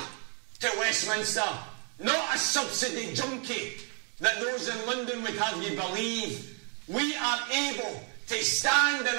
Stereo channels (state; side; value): quieter; left; 37.4 dB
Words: to Westminster, not a subsidy junkie that those in London would have you believe. We are able to stand on